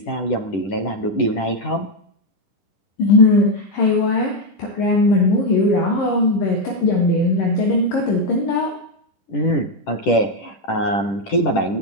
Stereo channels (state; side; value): late; right; 10 ms